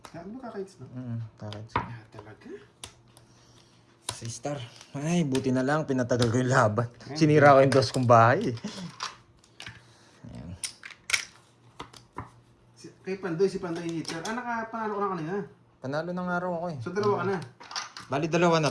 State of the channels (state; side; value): identical; both; correlation 1.00